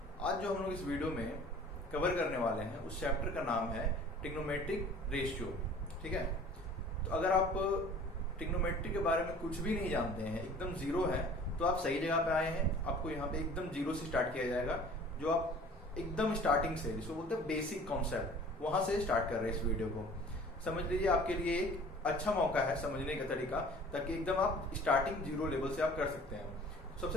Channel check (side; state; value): both; normal; correlation 0.47